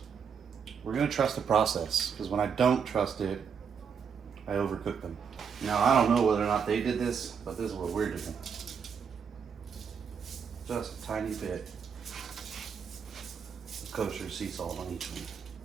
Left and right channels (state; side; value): quieter; left; 6.7 dB